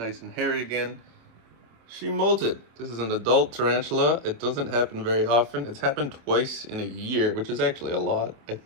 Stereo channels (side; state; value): left; late; 26 ms